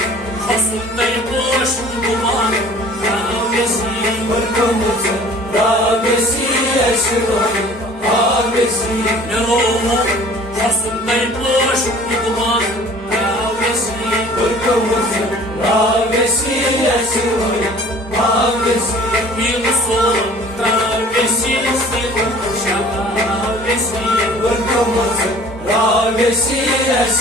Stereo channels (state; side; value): normal; both; correlation 0.49